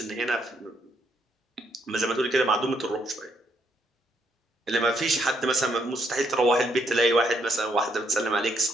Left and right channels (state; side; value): normal; both; correlation 0.73